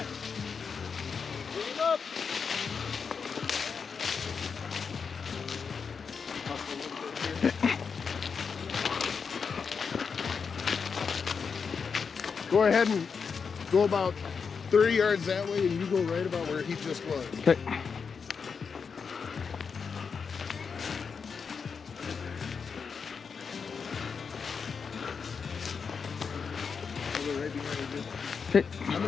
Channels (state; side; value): quieter; right; 5.8 dB